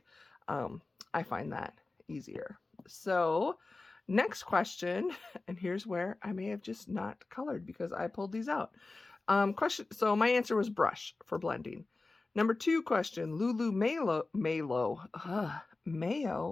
I find that easier. So next question, and here's where I may have just not colored because I pulled these out. So my answer was brush for blending. Number 2 question, Lulu, Mayo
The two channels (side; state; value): right; quieter; 3.5 dB